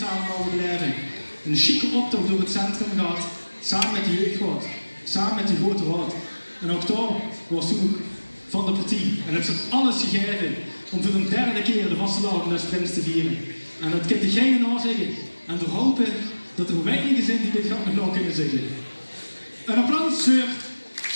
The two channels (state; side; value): inverted; both; correlation -1.00